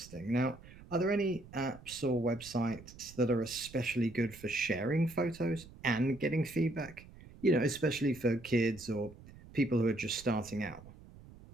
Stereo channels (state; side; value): noise; right; rumble, 19 dB below the sound